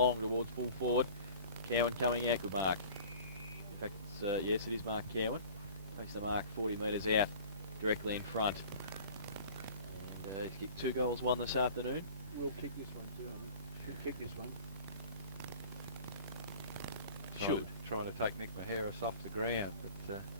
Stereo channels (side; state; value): both; inverted; correlation -0.44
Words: towards full forward. Cowan coming out, good mark. In fact, yes, it is Mark Cowan. Takes the mark 40 metres out, directly in front. And he's kicked 2 goals, 1 this afternoon. We'll kick this one too, I think. Should kick this one. Trying to take Nick Maheris off the ground, but